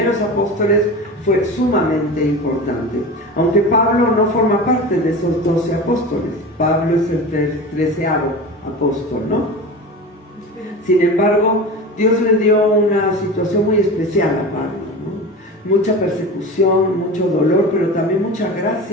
apóstoles fue sumamente importante. Aunque Pablo no forma parte de esos 12 apóstoles, Pablo es el 13º apóstol, ¿no? Sin embargo, Dios le dio una situación muy especial a Pablo, ¿no? Mucha persecución, mucho dolor, pero también mucha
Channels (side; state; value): both; normal; correlation 0.30